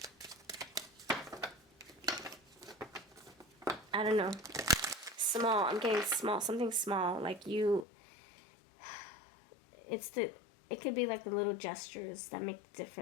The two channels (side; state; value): right; drops out; at 7.9 s